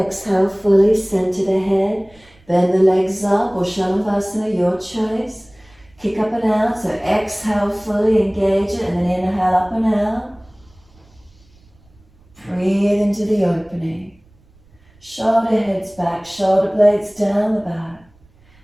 fully, center the head, bend the legs up, or Shalabhasana, your choice. Kick up and out, so exhale fully, engage it, and then inhale up and out. Breathe into the opening. Shoulder heads back, shoulder blades down the back.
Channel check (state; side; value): noise; right; rumble, 30 dB below the sound